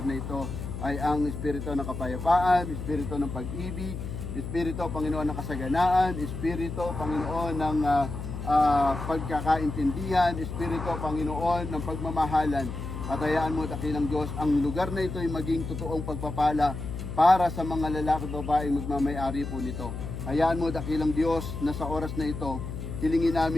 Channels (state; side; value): noise; left; hum, 7 dB below the sound